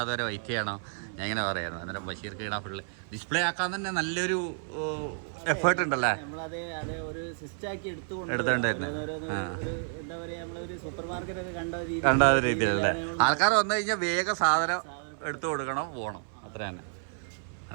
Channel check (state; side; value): silent; left; 58 dB below the other